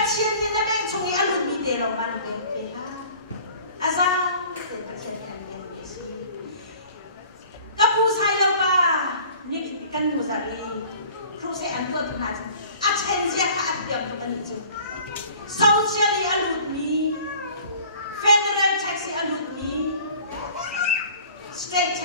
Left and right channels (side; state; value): both; inverted; correlation -0.48